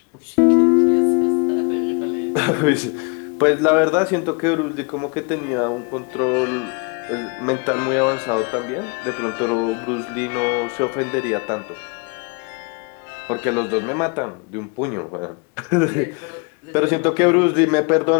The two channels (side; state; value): right; quieter; 33.9 dB